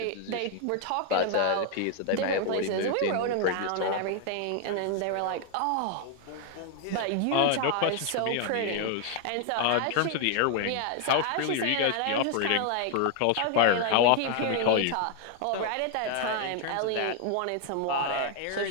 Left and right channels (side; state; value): both; different; correlation 0.00